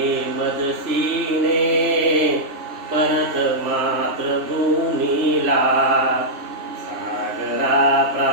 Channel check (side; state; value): left; late; 3.1 ms